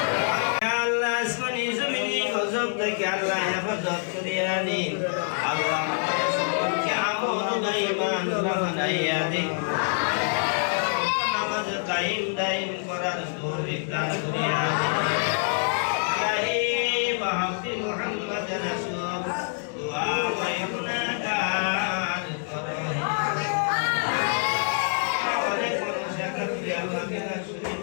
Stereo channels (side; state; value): right; silent; 61 dB below the other